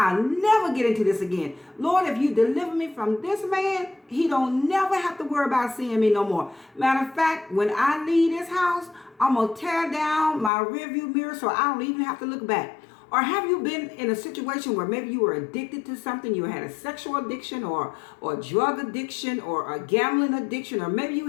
never get into this again. Lord, if you deliver me from this man, he don't never have to worry about seeing me no more. Matter of fact, when I leave this house, I'm going to tear down my rearview mirror so I don't even have to look back. Or have you been in a situation where maybe you were addicted to something? You had a sexual addiction or drug addiction or a gambling addiction, or maybe you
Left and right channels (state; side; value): drops out; right; at 10.5 s